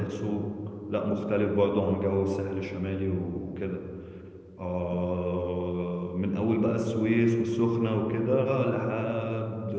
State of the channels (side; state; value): both; identical; correlation 1.00